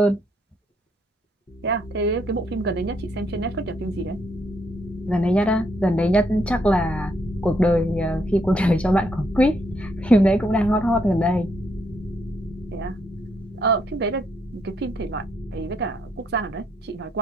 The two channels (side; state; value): both; normal; correlation 0.74